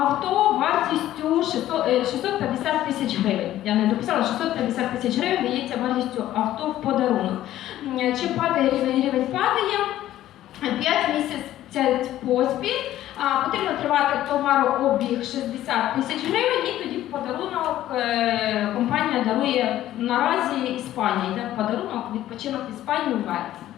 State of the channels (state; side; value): quieter; right; 13.4 dB